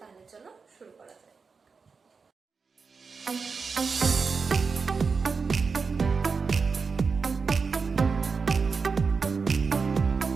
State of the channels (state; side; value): quieter; left; 5.0 dB